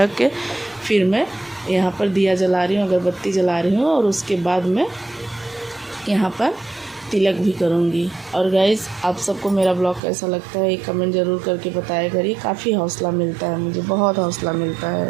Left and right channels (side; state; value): left; drops out; at 10.0 s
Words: के फिर मैं यहाँ पर दिया जला रही हूँ, अगरबत्ती जला रही हूँ। और उसके बाद मैं यहाँ पर तिलक भी करूँगी। और गाइज़ आप सबको मेरा ब्लॉग कैसा लगता है एक कमेंट ज़रूर करके बताया करिए, काफ़ी हौसला मिलता है, मुझे बहुत हौसला मिलता